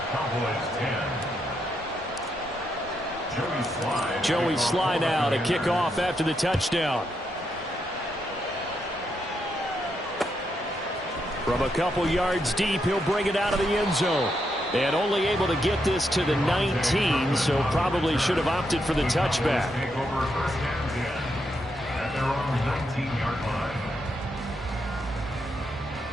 Cowboys 10. Joey Slye now to kick off after the touchdown. From a couple yards deep, he'll bring it out of the end zone. And only able to get this to the 19, so probably should have opted for the touchback. Take over first and 10 at their own 19-yard line.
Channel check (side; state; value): both; normal; correlation 0.81